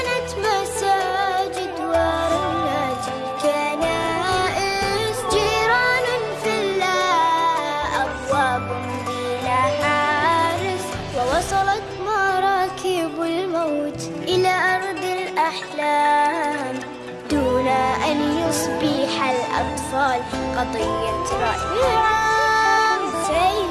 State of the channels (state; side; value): identical; both; correlation 1.00